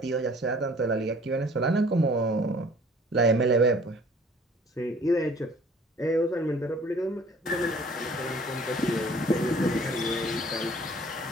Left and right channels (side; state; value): both; normal; correlation 0.53